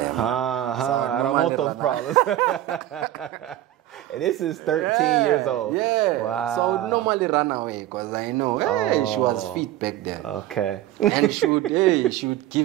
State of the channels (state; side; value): quieter; left; 13.7 dB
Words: I don't want those problems. And this is 13 years old. Yeah. Wow. So I would normally run away because I know, hey, she was fit back then. Okay. And she would